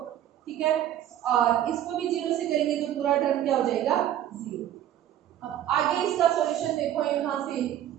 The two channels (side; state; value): left; quieter; 11.5 dB